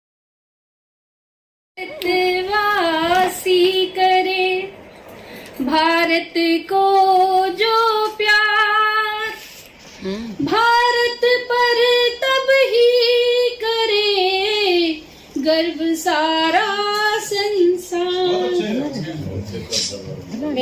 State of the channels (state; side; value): identical; both; correlation 1.00